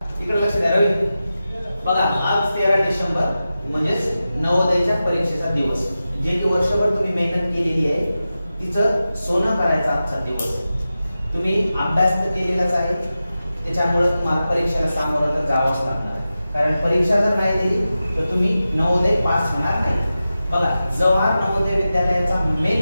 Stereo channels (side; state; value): both; inverted; correlation -0.93